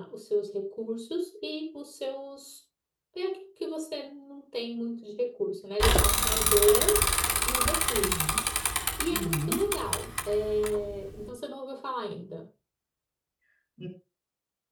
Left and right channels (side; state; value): both; identical; correlation 1.00